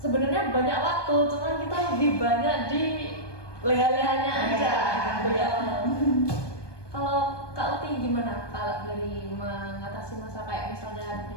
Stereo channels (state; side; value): late; right; 1.2 ms